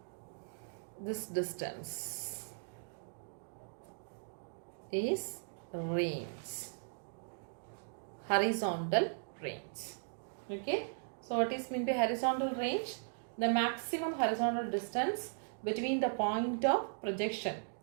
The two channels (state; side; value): silent; left; digital silence